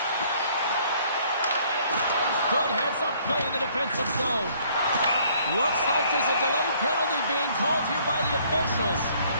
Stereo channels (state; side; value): inverted; both; correlation -0.61